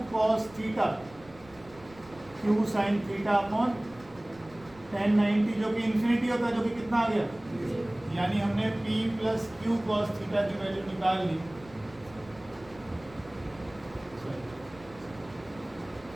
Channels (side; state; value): right; noise; rumble, 23 dB below the sound